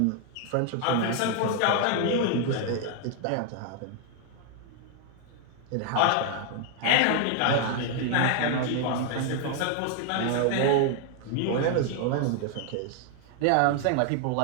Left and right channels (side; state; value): both; different; correlation 0.00